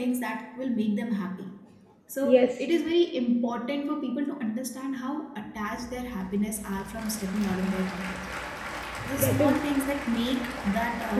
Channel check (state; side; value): identical; both; correlation 1.00